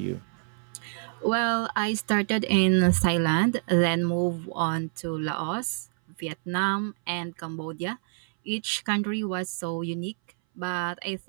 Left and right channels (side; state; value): left; silent; 60 dB below the other